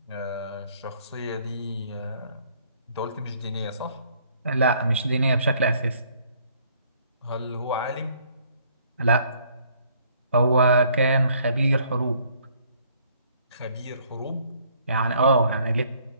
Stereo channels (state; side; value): inverted; both; correlation -0.62